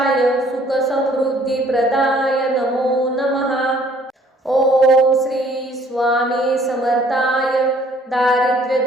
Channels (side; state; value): both; normal; correlation 0.59